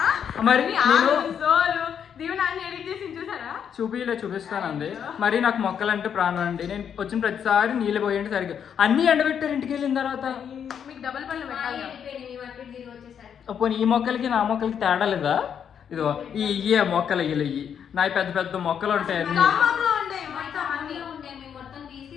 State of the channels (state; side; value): quieter; right; 8.1 dB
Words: మరి చూపిస్తానండి. మరి నాకు మొక్కలు అంటే ప్రాణం అండి. నేను వచ్చిన ప్రతిసారి నీళ్ళు పోయండి సరిగ్గా అన్ని ఎండబెట్టారు ఇంటికి వెళ్ళిన తర్వాత. పోనీ ఈ మొక్కలకి నా మొక్కలకి తేడా లేదా? ఇదిగో ఇయ్యే మొక్కలు ఇయ్యి నా పెద్ద పెద్ద మొక్కలు ఉంటాయి అన్ని.